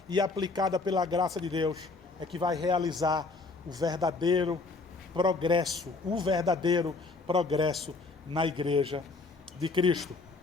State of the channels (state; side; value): quieter; right; 3.7 dB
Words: e aplicada pela graça de Deus, é que vai realizar o verdadeiro progresso na Igreja de Cristo.